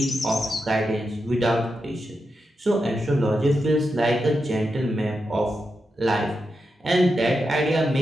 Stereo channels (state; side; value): normal; both; correlation 0.87